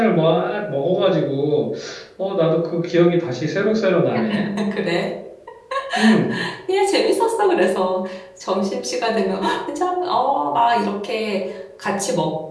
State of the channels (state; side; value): identical; both; correlation 1.00